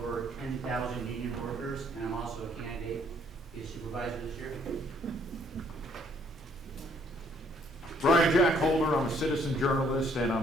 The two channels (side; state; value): both; normal; correlation 0.65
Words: 10,000 union workers, and I'm also a candidate. Supervisor this year. Brian Jack Holder, I'm a citizen journalist and